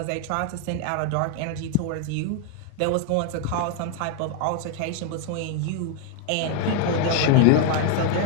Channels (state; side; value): different; both; correlation 0.00